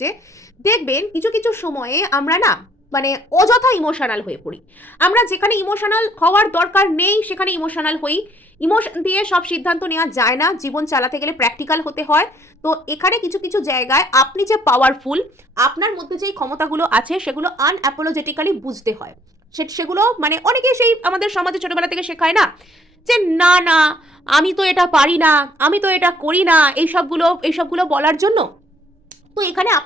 দেখবেন কিছু কিছু সময়ে আমরা না মানে অযথা ইমোশনাল হয়ে পড়ি। আমরা যেখানে ইমোশনাল হওয়ার দরকার নেই সেখানে ইমোশনাল হই। ইমোশন দিয়ে সব সিদ্ধান্ত নেওয়া যায় না, জীবন চালাতে গেলে প্র্যাকটিক্যাল হতে হয়। তো এখানে কিছু কিছু জায়গায় আপনি যে পাওয়ারফুল, আপনার মধ্যে যেই ক্ষমতাগুলো আছে সেগুলো আনঅ্যাপোলজেটিক্যালি বুঝতে হয়। সেগুলো মানে অনেকেই সেই আমাদের সমাজে ছোটবেলা থেকে শেখায় না যে না না আমি তো এটা পারি না, আমি তো এটা করি না, এইসবগুলো বলার জন্য। তো এখানে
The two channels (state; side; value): normal; both; correlation 0.63